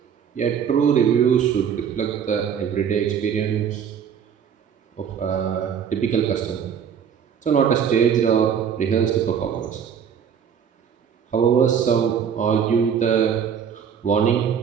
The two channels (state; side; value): quieter; left; 7.8 dB